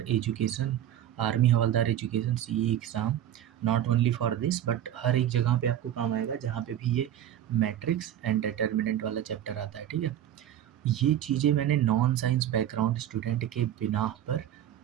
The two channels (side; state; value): left; quieter; 11.2 dB